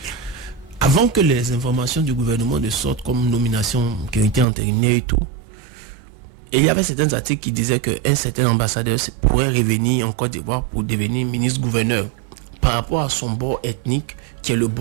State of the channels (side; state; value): left; drops out; at 4.5 s